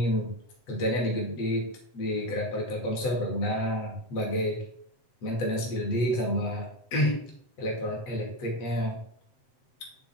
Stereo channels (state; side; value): late; right; 7.8 ms